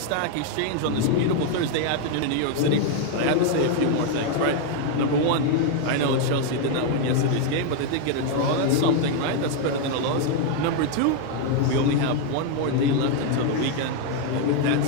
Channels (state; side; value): different; both; correlation 0.01